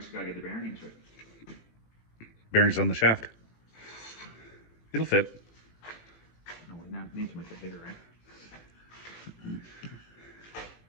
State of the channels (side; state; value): right; late; 18 ms